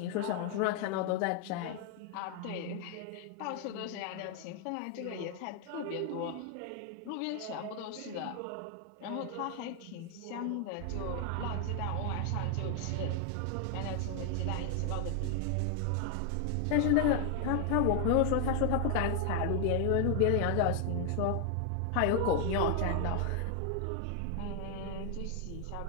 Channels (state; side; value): different; both; correlation 0.00